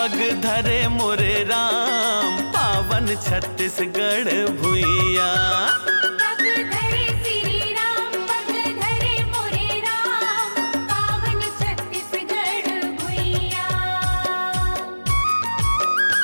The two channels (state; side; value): inverted; both; correlation -1.00